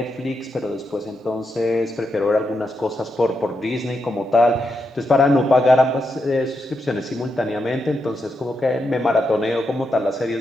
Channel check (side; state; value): both; normal; correlation 0.84